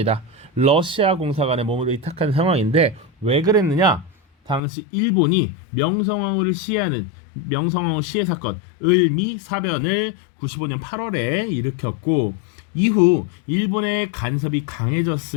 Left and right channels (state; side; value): drops out; right; at 4.6 s